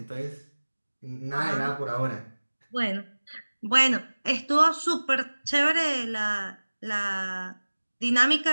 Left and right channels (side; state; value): both; inverted; correlation -1.00